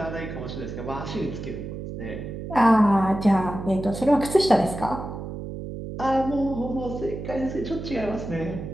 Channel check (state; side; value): noise; right; hum, 8 dB below the sound